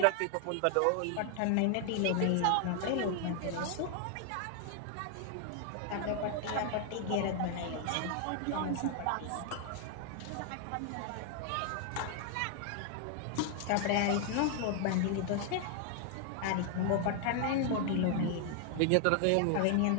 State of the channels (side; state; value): both; different; correlation 0.00